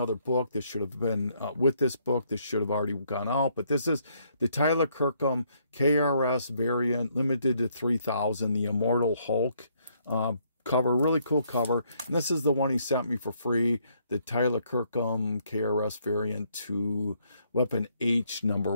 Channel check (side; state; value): both; inverted; correlation -0.70